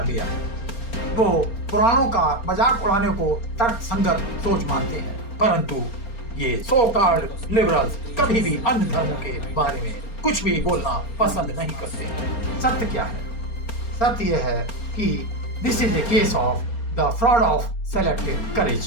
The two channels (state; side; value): late; right; 4.3 ms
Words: लिया है। वो पुराणों का मजाक उड़ाने को तर्कसंगत सोच मानते हैं, परंतु ये सो कॉल्ड लिबरल्स कभी भी अन्य धर्मों के बारे में कुछ भी बोलना पसंद नहीं करते। सत्य क्या है? सत्य यह है कि this is a case of the fraud of selective